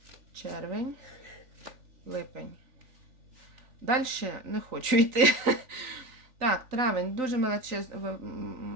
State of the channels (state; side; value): late; left; 3.9 ms